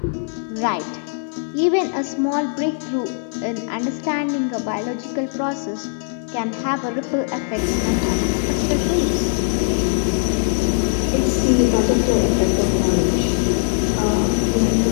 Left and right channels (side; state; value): right; silent; digital silence